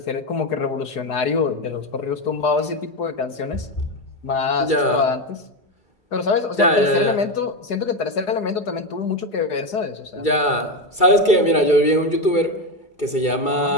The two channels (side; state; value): right; late; 2.3 ms